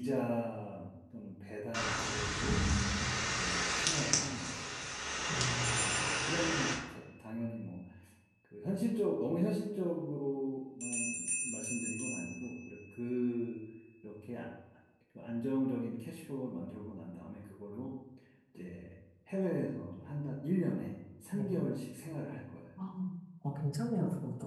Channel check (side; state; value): both; identical; correlation 1.00